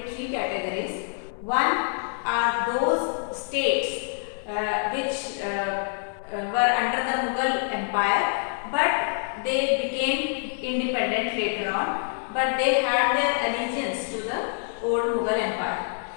three categories. One are those states which were under the Mughal Empire, but they became independent later on, but they had their allegiance to the old Mughal Empire.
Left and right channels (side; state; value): right; silent; 61 dB below the other